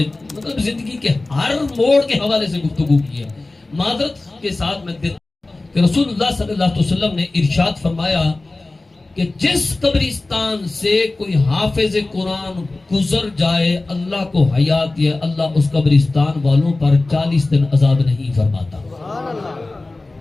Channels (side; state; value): right; quieter; 3.1 dB